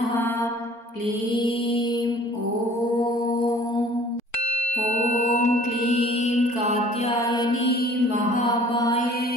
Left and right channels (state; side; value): late; right; 4.4 ms